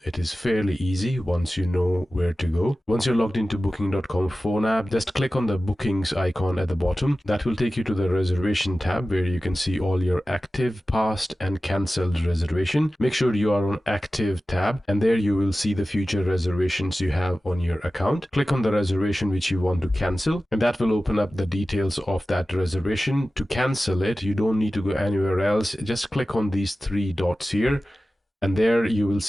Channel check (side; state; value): both; normal; correlation 0.95